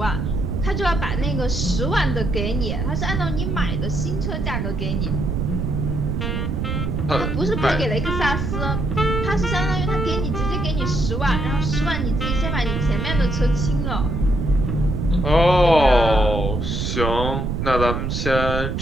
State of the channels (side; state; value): right; noise; rumble, 1 dB below the sound